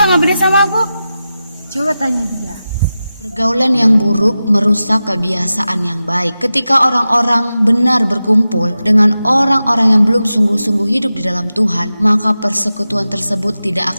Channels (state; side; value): inverted; both; correlation -0.93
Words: ngambek sama aku? Coba tanya dia. Pergaulan yang buruk merusak kebiasaan yang baik. Ketika orang-orang benar berkumpul dengan orang-orang yang belum sungguh-sungguh hidup di dalam Tuhan, maka persekutuan tersebut tidak